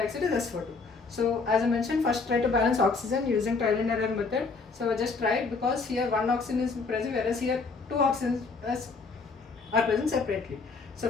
is SO2. So as I mentioned, first try to balance oxygen using trial and error method. So just try it, because here one oxygen is present, whereas here 2 oxygens are present separately. So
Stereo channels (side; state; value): right; quieter; 4.4 dB